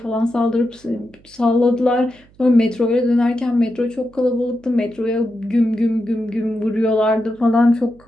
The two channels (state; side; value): noise; right; hum, 29 dB below the sound